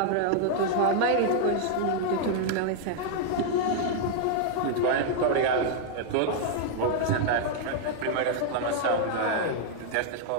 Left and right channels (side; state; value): both; different; correlation -0.01